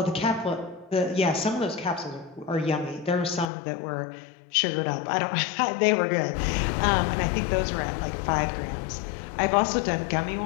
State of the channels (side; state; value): right; drops out; at 3.5 s